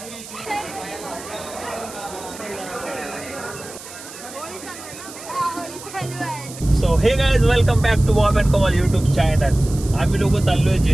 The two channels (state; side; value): noise; right; hiss, 15 dB below the sound